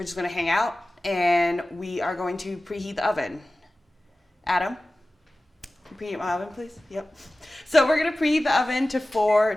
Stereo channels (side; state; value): both; normal; correlation 0.96